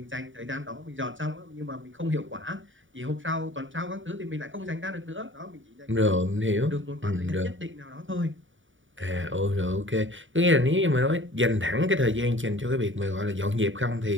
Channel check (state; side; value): late; left; 0.56 ms